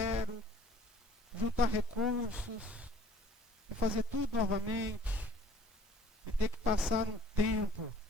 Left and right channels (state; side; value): normal; both; correlation 0.53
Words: juntar recursos, e fazer tudo novamente, e ter que passar um tempo